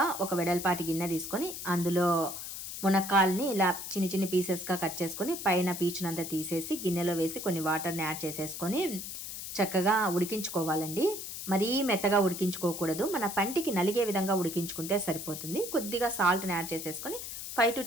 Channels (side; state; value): left; noise; hiss, 8 dB below the sound